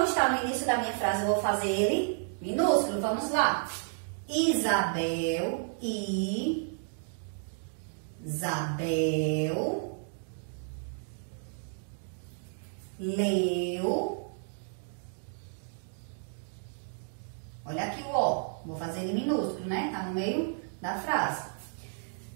está no início da minha frase, eu vou fazer ele minúsculo. Vamos lá. Isabel, leu. Olha aqui o O. Vou fazer ele minúsculo, né? Tá no meio da frase.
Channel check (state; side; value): silent; left; digital silence